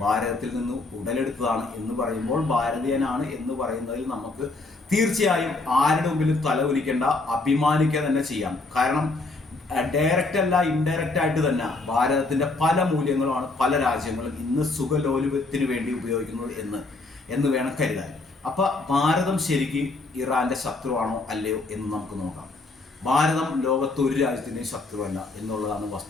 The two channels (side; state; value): right; quieter; 3.4 dB